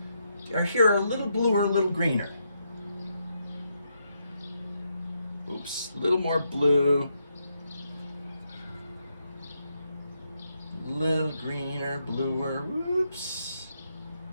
are here a little bluer, a little greener. Oops, a little more blue. A little greener, bluer, whoops.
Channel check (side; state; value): both; inverted; correlation -0.80